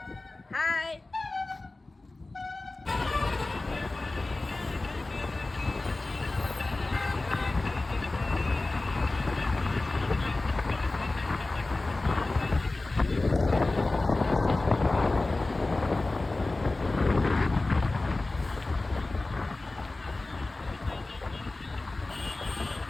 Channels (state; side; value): quieter; right; 3.1 dB